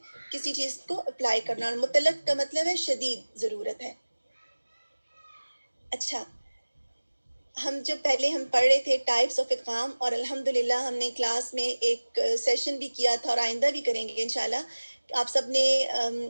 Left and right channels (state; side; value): inverted; both; correlation -1.00